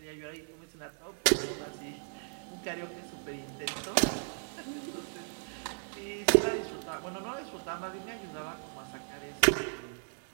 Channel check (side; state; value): left; silent; digital silence